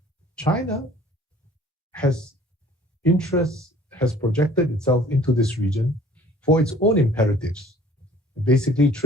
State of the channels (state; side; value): normal; both; correlation 0.52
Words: China has projected itself into this region for its own imperatives, basically